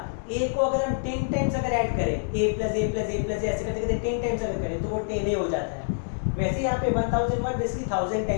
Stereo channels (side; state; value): right; silent; digital silence